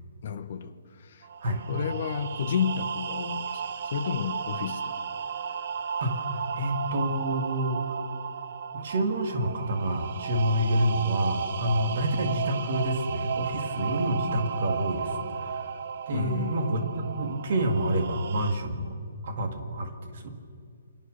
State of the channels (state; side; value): inverted; both; correlation -0.65